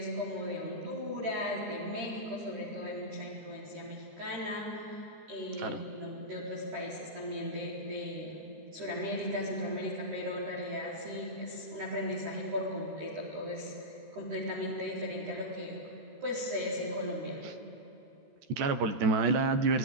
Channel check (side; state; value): left; late; 13 ms